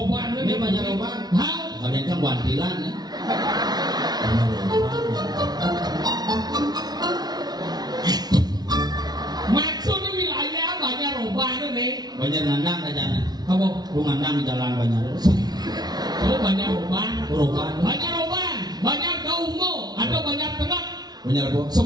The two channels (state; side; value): late; left; 0.19 ms